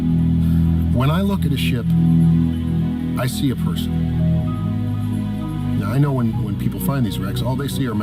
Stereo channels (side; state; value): both; identical; correlation 1.00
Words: When I look at a ship, I see a person. Now, I know when people find these wrecks, all they see are